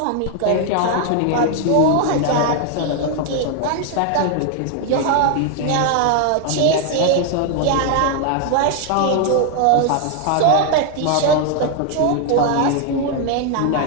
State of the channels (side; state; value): both; different; correlation 0.01